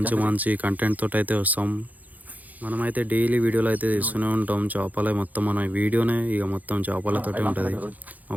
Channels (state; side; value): late; left; 0.079 ms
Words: మంచి కంటెంట్ తోటి అయితే వస్తాం. మనమైతే డైలీ వీడియోలు అయితే తీస్తూనే ఉంటాం. చేపలే మొత్తం మన వీడియోనే ఇక మొత్తం చేపలతోటే ఉంటుంది. మా